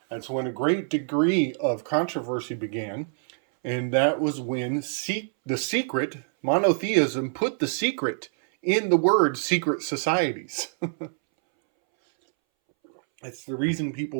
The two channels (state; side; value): silent; left; 61 dB below the other